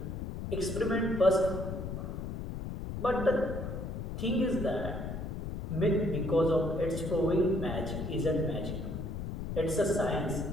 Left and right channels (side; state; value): left; noise; rumble, 5 dB below the sound